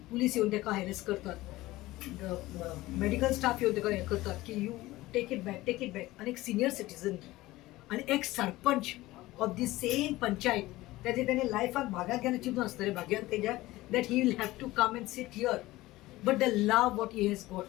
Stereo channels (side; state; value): right; quieter; 18.2 dB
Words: पुलीस येवन ताका हॅरेस करतात मेडिकल स्टाफ येवन ताका हें करतात की यू टेक इट बॅक आनी एक सिनियर सिटीजन आनी एक sarpanch of the same panchayat त्याचे त्याने लायफाक भाग्यात घेवन चिंतून आसतलें भाग्यात तेज्या that he will have to come and sit here but the love what he has